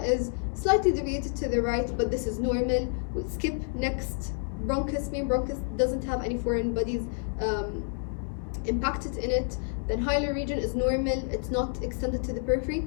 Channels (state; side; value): silent; right; 55 dB below the other